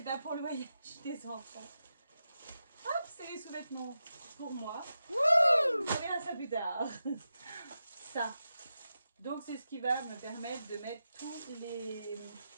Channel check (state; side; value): inverted; both; correlation -0.89